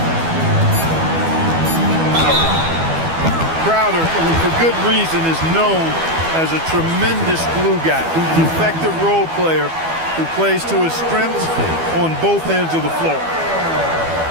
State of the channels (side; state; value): left; late; 12 ms